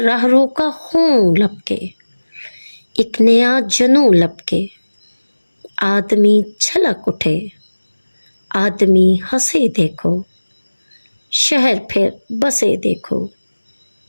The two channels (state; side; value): inverted; both; correlation -1.00